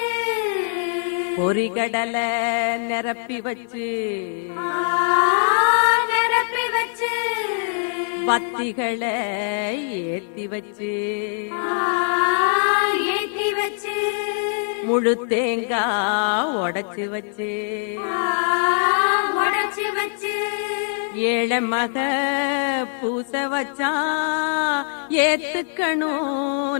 பொறிகடலை நிரப்பி வச்சு நிரப்பி வச்சு பத்திகளை ஏத்தி வச்சு ஏத்தி வச்சு முழு தேங்காய் உடைச்சு வச்சு உடைச்சு வச்சு ஏழை மக பூச வச்சா ஏத்துக்கணும்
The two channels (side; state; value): right; silent; digital silence